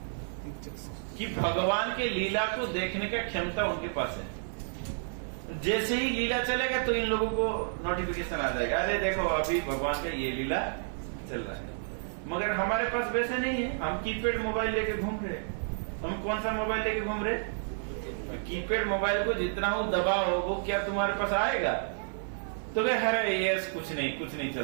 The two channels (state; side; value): silent; left; 57 dB below the other